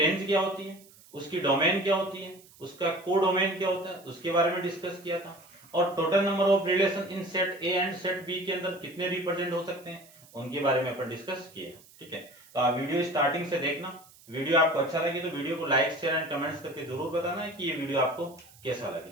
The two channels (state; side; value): noise; right; hiss, 24 dB below the sound